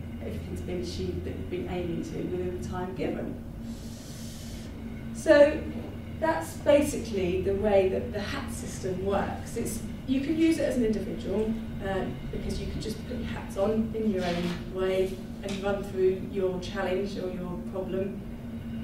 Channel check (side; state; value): both; identical; correlation 1.00